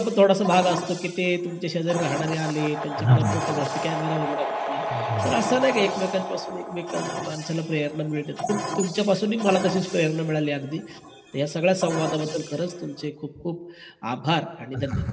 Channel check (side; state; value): both; identical; correlation 1.00